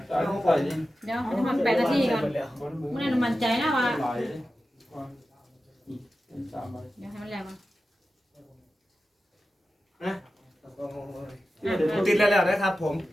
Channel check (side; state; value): both; normal; correlation 0.93